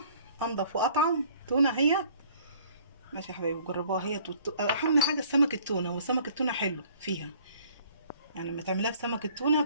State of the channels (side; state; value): both; inverted; correlation -0.56